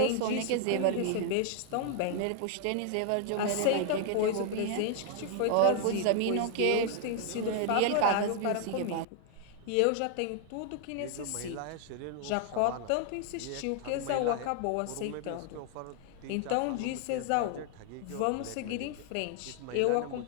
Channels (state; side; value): different; both; correlation 0.00